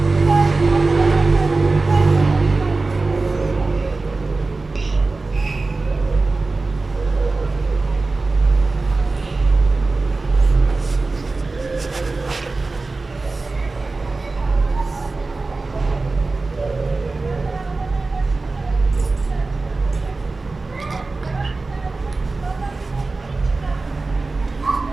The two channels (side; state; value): left; quieter; 3.6 dB